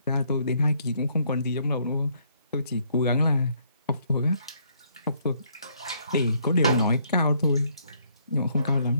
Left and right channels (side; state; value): both; inverted; correlation -0.69